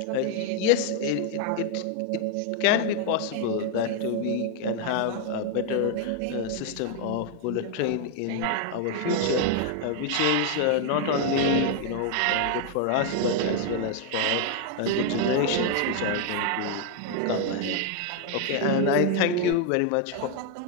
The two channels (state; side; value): different; both; correlation 0.01